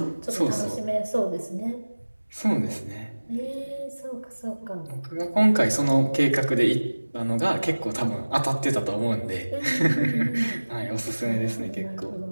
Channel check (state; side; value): inverted; both; correlation -1.00